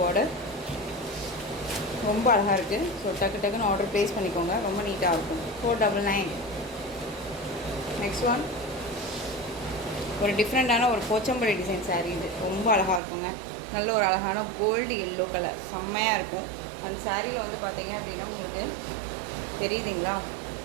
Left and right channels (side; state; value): left; drops out; at 13.0 s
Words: ரொம்ப அழகாக இருக்குது. ஸோ டக்குன்னு ஆர்டர் ப்ளேஸ் பண்ணிக்கோங்க, ரொம்ப நீட்டாக இருக்கும். 499. நெக்ஸ்ட் ஒன் ஒரு டிஃப்ரெண்ட்டான ஒரு போச்சம்பள்ளி டிசைன் சாரீ. இது ரொம்ப அழகாக இருக்குங்க. நல்ல ஒரு அழகான கோல்டு எல்லோ கலர், செம்மையாக இருக்கும். அந்த சாரியில் வந்து பார்த்தீங்க அப்படின்னா உங்களுக்கு தெரியுதுங்களா,